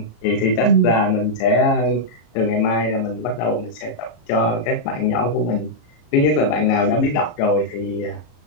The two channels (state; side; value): late; right; 34 ms